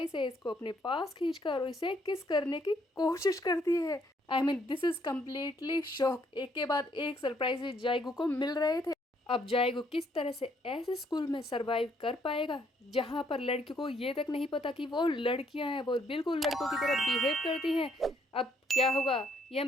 से इसको अपने पास खींचकर इसे किस करने की कोशिश करती है। I mean this is completely shock. एक के बाद एक सरप्राइज जाएगू को मिल रहे थे। अब जाएगू किस तरह से ऐसे स्कूल में सरवाइव कर पाएगा जहां पर लड़कियों को ये तक नहीं पता कि वो लड़कियां हैं, वो बिल्कुल लड़कों की तरह बिहेव करती हैं। अब क्या होगा ये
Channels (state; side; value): normal; both; correlation 0.69